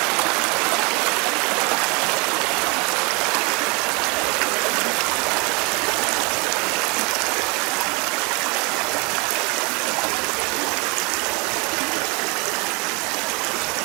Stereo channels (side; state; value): left; quieter; 29.9 dB